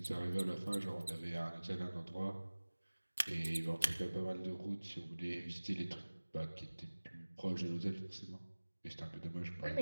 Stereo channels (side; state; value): both; inverted; correlation -1.00